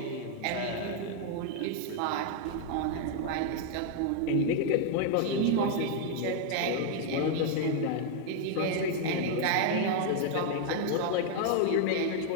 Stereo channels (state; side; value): different; both; correlation 0.00